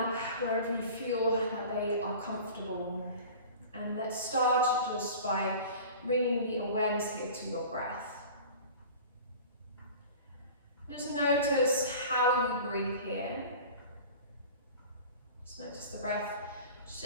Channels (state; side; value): inverted; both; correlation -0.39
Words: wherever you feel that they are comfortable. And let's start just by bringing the awareness here to your breath. Just notice how you breathe here. Just notice the breath